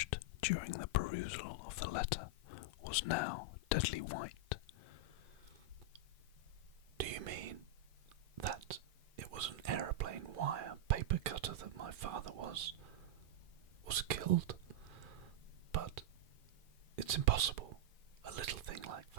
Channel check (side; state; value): left; late; 1.8 ms